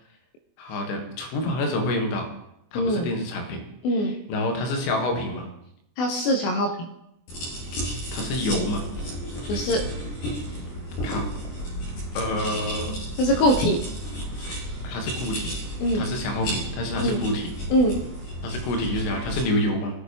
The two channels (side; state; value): right; late; 24 ms